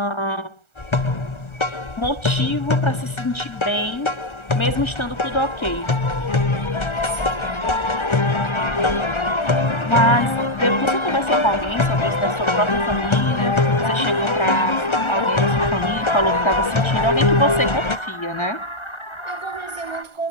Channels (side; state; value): right; late; 1.3 ms